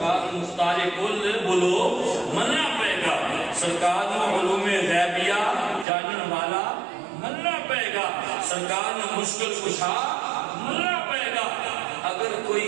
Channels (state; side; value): drops out; left; at 5.9 s